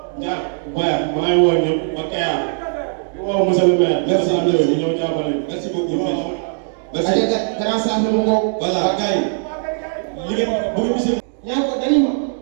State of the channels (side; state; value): left; silent; digital silence